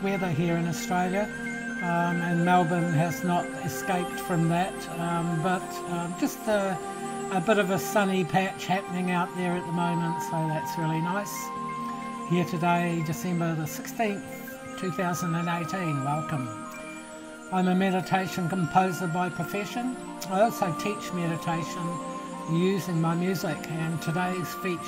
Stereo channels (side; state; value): both; identical; correlation 1.00